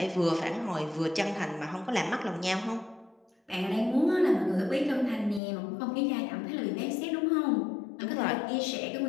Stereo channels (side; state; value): right; drops out; at 5.4 s